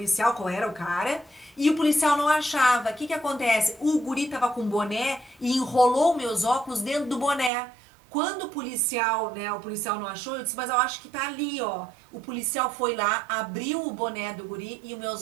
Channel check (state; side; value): drops out; left; at 7.5 s